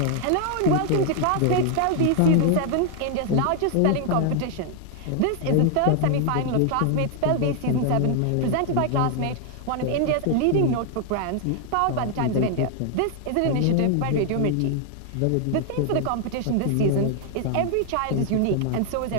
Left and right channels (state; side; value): different; both; correlation 0.00